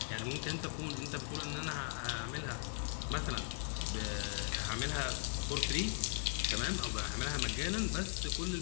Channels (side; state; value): right; silent; 52 dB below the other